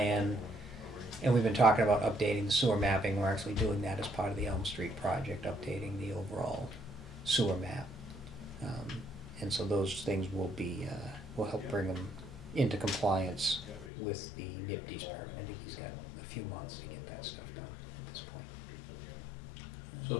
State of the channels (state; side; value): drops out; right; at 13.9 s